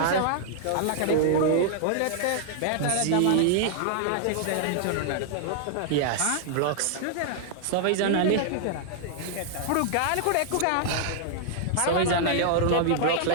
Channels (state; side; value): different; both; correlation -0.01